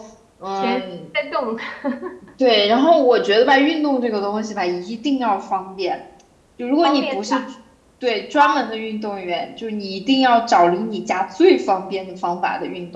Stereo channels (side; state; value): both; identical; correlation 1.00